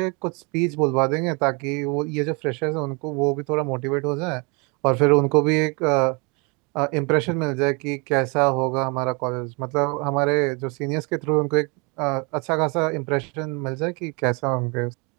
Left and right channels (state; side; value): quieter; left; 31.2 dB